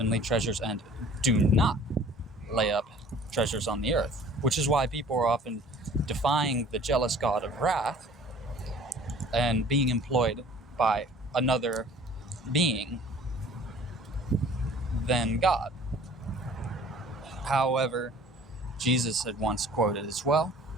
treasures and do not lay up treasures on the earth, which is why people are often defying the jealous God of wrath and being employed by another being than God. However, Jesus had once quoted as well,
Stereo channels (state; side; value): normal; both; correlation 0.49